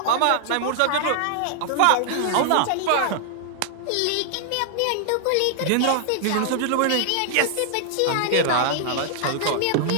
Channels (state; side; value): different; both; correlation -0.01